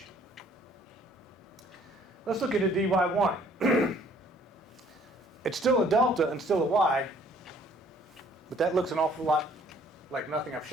Let's look at a DY1. It's still a delta and still a Y, but that looks an awful lot like nothing I've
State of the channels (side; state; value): both; normal; correlation 0.59